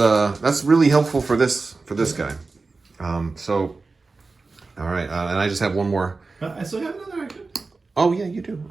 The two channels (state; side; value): quieter; left; 3.9 dB